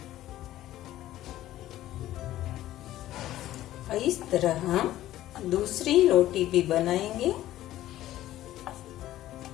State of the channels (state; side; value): quieter; right; 14.2 dB